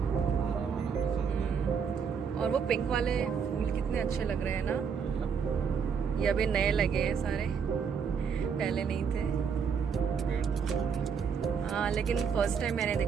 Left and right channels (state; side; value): quieter; left; 6.5 dB